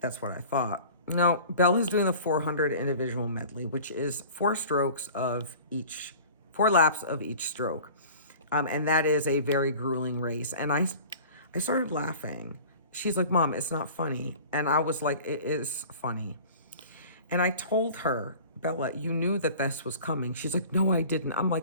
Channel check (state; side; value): inverted; both; correlation -0.42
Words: what I thought. No, Bella's doing the 400 individual medley, which is 4 laps of each stroke. And that is a very grueling race. And I started laughing. She's like, Mom, it's not funny. And I was like, it is funny. And I told her, Bella, you knew that this was coming. She's like, no, I didn't. I'm